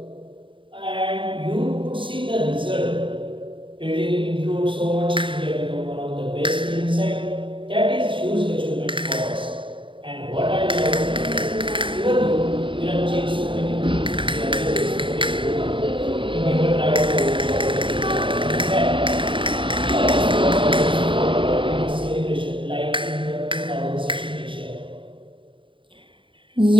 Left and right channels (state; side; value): late; left; 0.25 ms